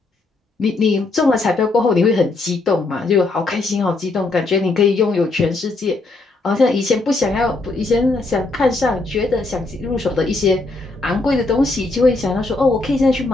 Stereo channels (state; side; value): quieter; right; 3.3 dB